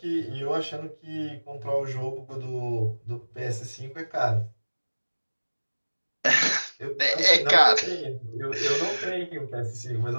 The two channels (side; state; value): both; inverted; correlation -1.00